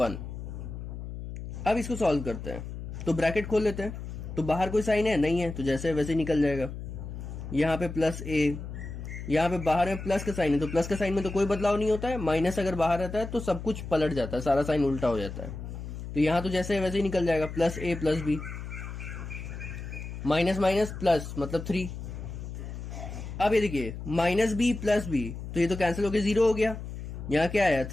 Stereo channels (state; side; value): noise; left; hum, 9 dB below the sound